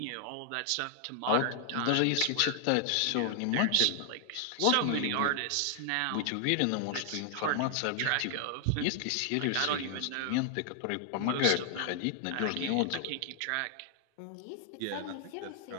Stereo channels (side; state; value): both; different; correlation 0.00